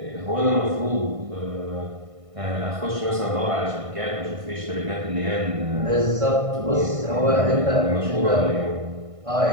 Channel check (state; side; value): late; left; 1.6 ms